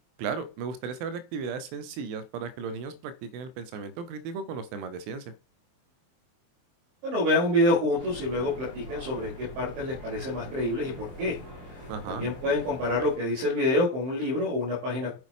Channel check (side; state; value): left; late; 23 ms